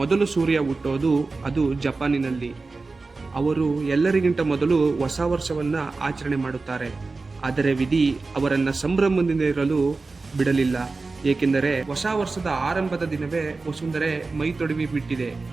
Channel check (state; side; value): quieter; left; 3.8 dB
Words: ಸೂರ್ಯ ಹುಟ್ಟೋದು ಅದು ಜಪಾನಿನಲ್ಲಿ. ಅವರು ಎಲ್ಲರಿಗಿಂತ ಮೊದಲು ಹೊಸ ವರ್ಷವನ್ನು ಆಚರಣೆ ಮಾಡುತ್ತಾರೆ. ಆದರೆ ವಿಧಿ ಅವರನ್ನು ಸಂಭ್ರಮದಿಂದಿರಲು ಬಿಡಲಿಲ್ಲ. ಏಕೆಂದರೆ ಹೊಸ ವರ್ಷದ ಆರಂಭದ ದಿನವೇ ವಸುಂಧರೆ ಮೈ ತೊಡವಿ ಬಿಟ್ಟಿದೆ.